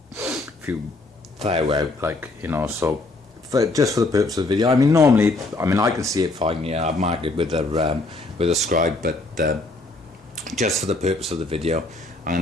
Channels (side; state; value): right; quieter; 3.1 dB